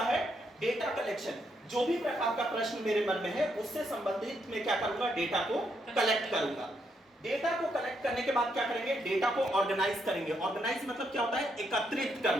है? Data collection. जो भी प्रकार का प्रश्न मेरे मन में है उससे संबंधित मैं क्या करूंगा? डेटा को कलेक्ट करूंगा। डेटा को कलेक्ट करने के बाद क्या करेंगे? डेटा को ऑर्गेनाइज करेंगे। ऑर्गेनाइज मतलब क्या होता है? एकत्रित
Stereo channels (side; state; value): both; normal; correlation 0.77